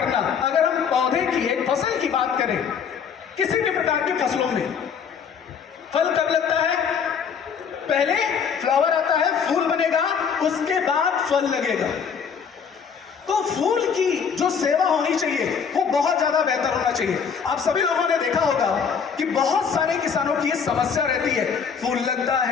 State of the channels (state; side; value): quieter; right; 6.7 dB